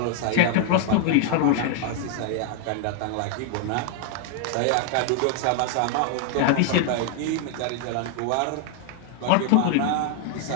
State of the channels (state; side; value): different; both; correlation 0.00